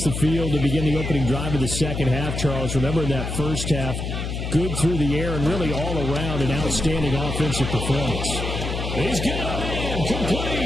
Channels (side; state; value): left; noise; hum, 4 dB below the sound